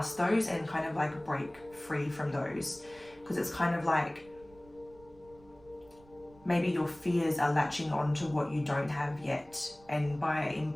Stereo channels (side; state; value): right; noise; rumble, 26 dB below the sound